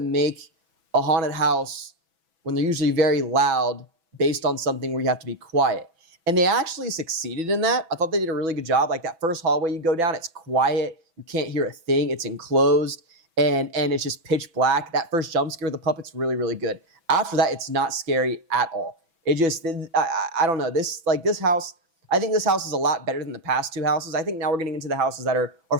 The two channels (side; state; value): left; late; 6.0 ms